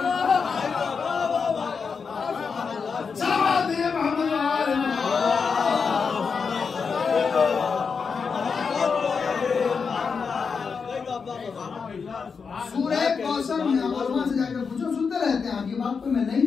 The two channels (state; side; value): quieter; right; 5.5 dB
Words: سورہ کوثر میں علماء سے جا کر پوچھو، سنتے رہتے ہیں آپ یہ بات، کوئی میں